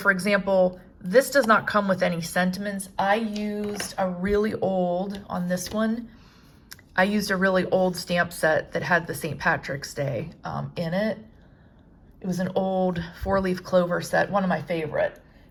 example, this does not come with any sentiments. I used a really old, on this one, I used a really old stamp set that had the St. Patrick's Day in it. It was an old 4-leaf clover set, one of my favorite,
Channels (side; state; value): both; identical; correlation 1.00